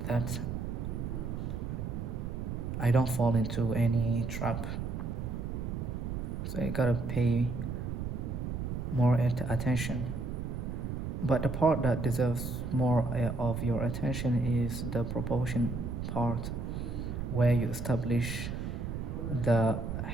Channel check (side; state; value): right; noise; rumble, 4 dB below the sound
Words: that I don't fall into any trap. So you gotta pay more attention. But the part that deserves more of your attention is the proportion part, where you establish the